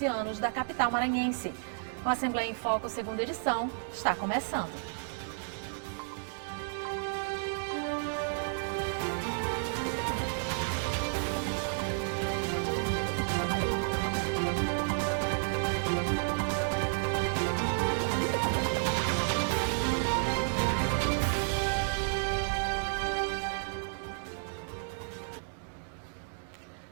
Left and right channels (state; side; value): silent; left; digital silence